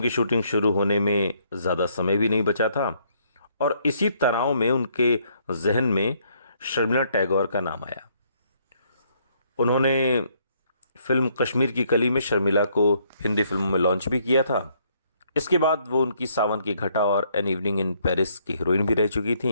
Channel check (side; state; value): both; inverted; correlation -0.69